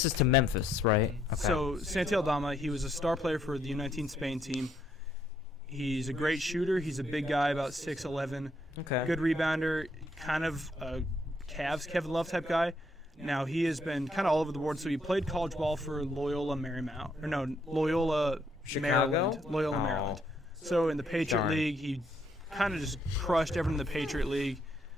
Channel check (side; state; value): both; normal; correlation 0.72